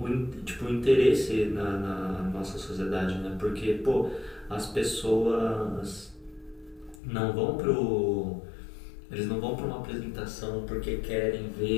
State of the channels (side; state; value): right; drops out; at 7.0 s